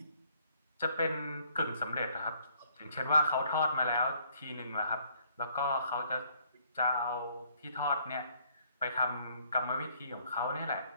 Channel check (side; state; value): both; inverted; correlation -0.64